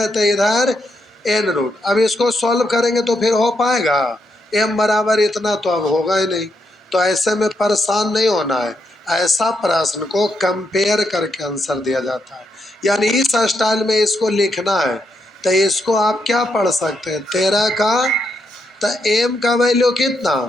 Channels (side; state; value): both; normal; correlation 0.80